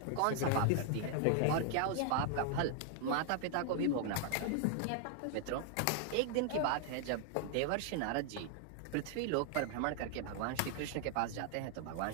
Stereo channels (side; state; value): both; different; correlation 0.00